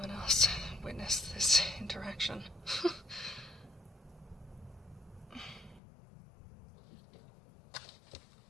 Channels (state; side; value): drops out; right; at 5.8 s